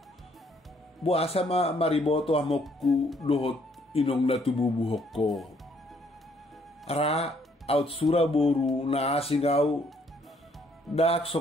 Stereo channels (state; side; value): normal; both; correlation 0.66